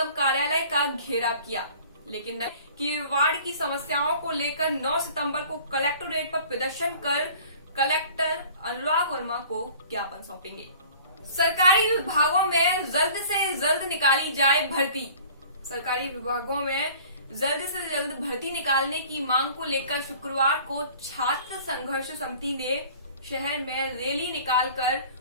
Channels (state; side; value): inverted; both; correlation -0.47